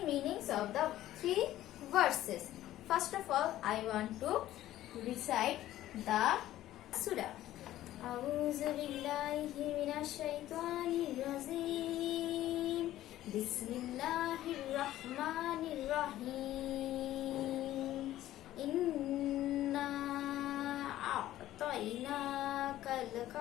meanings of the three verses. First of all, I want to recite the surah. أعوذ بالله من الشيطان الرجيم بسم الله الرحمن الرحيم إنا أعطيناك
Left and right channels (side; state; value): right; quieter; 14.0 dB